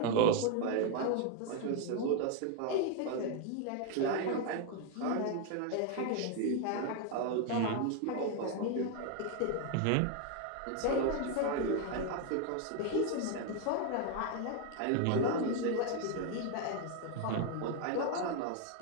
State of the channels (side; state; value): both; different; correlation 0.01